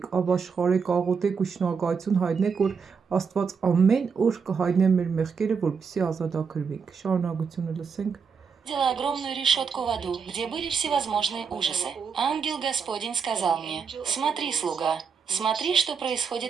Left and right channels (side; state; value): left; quieter; 5.9 dB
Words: ապաշխարեք, աղոթեք ու շնորհակալություն հայտնեք, որ Աստված ամեն օր կհայտնե մեր մեղքերը, որպեսզի ազատագրվենք։ Շարունակությունը լսենք։ видела огромную решетку в аду, где были всевозможные ужасы. Ангел Господень сказал мне: «Смотри, слуга, смотри, что